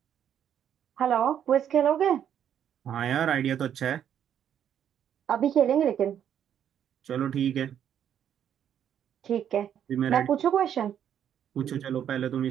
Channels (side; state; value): left; quieter; 9.4 dB